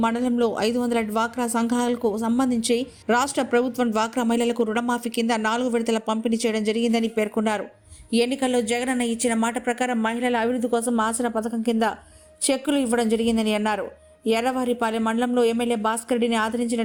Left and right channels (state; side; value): identical; both; correlation 1.00